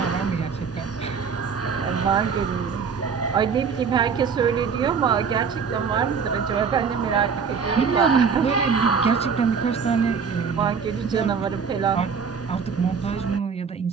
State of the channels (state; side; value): quieter; left; 6.0 dB